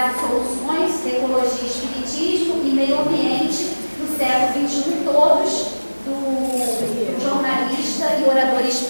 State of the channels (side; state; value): both; inverted; correlation -1.00